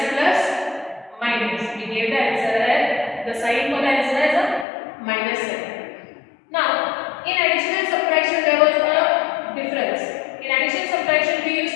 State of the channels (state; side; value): drops out; right; at 4.7 s